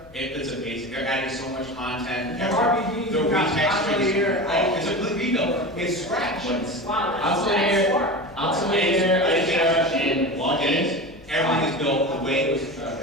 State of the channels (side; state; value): left; noise; hum, 24 dB below the sound